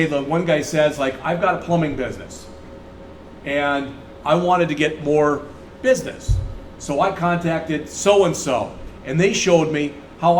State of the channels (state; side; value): identical; both; correlation 1.00